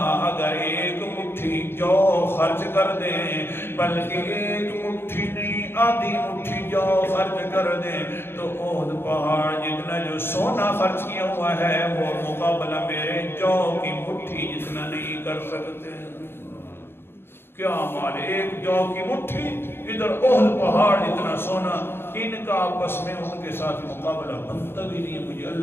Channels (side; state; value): right; late; 0.11 ms